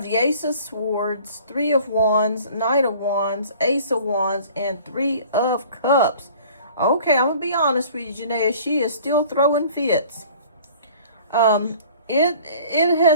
the Ace of Swords, Three of Wands, Knight of Wands, Ace of Wands, and Three of Cups. Okay, I'm gonna be honest with you, Janaea. She is still throwing fits. It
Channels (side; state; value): both; inverted; correlation -0.49